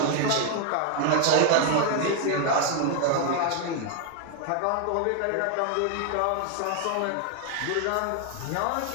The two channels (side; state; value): both; different; correlation 0.00